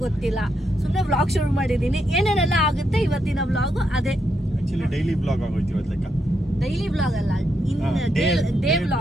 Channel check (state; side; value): normal; both; correlation 0.80